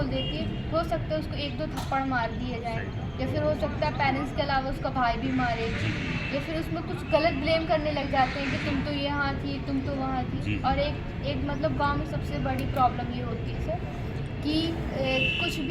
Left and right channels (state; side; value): identical; both; correlation 1.00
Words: देती है, हो सकता है उसको 1-2 थप्पड़ मार दिए जाए, या फिर हो सकता है पेरेंट्स के अलावा उसका भाई भी मारे, या फिर उसमें कुछ गलत ब्लेम करने लग जाते हैं कि तुम तो यहाँ थी, तुम तो वहाँ थी। जी। और एक मतलब गांव में सबसे बड़ी प्रॉब्लम ये होती है सर कि कुछ